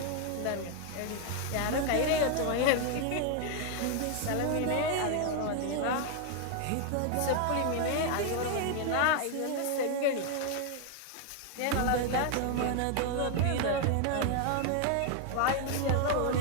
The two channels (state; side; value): different; both; correlation 0.00